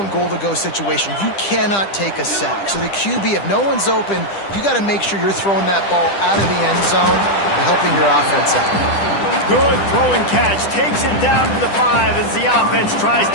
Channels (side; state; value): right; late; 10 ms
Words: goal-to-go situation. You cannot take a sack. So the QB, if no one's open, you got to make sure you're throwing that ball out of the end zone and helping your offense out. Good throw and catch. Takes it down to the 5 as the offense tries